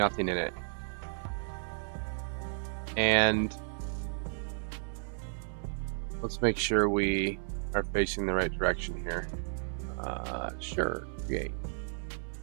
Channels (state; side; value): silent; left; 56 dB below the other